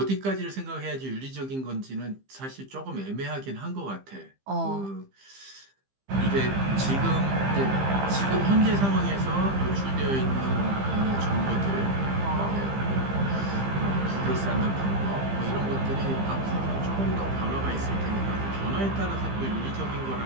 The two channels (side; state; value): left; late; 15 ms